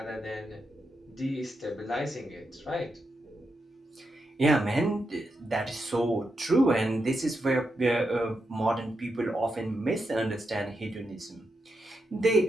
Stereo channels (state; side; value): normal; both; correlation 0.85